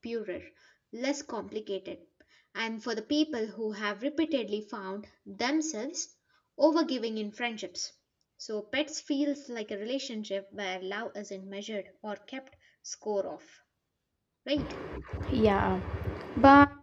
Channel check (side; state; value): both; identical; correlation 1.00